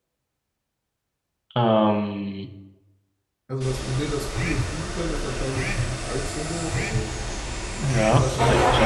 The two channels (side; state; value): both; identical; correlation 1.00